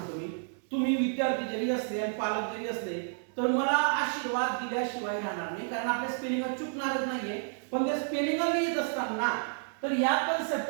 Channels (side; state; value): left; silent; digital silence